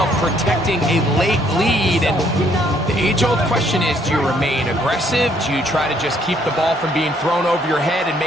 protecting a late lead, and the age-old question is, do you remain aggressive? Do you try to just keep the ball from being thrown over your head and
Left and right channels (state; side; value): normal; both; correlation 0.66